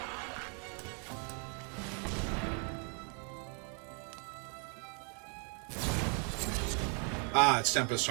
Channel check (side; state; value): left; quieter; 39.6 dB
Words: Ah, it's Tempest